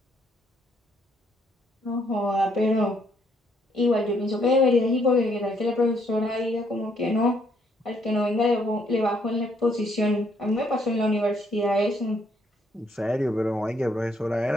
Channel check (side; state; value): both; normal; correlation 0.70